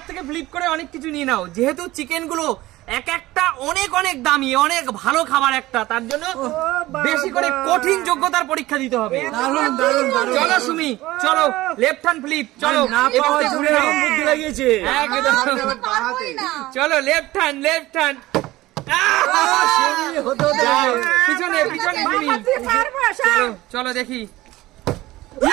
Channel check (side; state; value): left; quieter; 17.7 dB